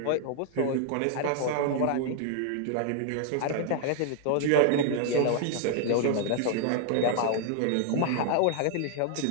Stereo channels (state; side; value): different; both; correlation 0.00